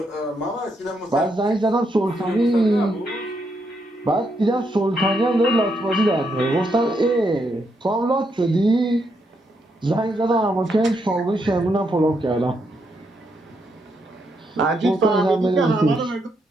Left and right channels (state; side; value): normal; both; correlation 0.79